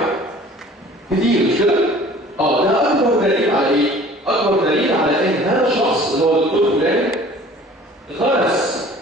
كتير مش كده؟ ده اكبر دليل على ايه؟ اكبر دليل على ان هذا الشخص اللي هو الدكتور فلان غرس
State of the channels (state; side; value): normal; both; correlation 0.48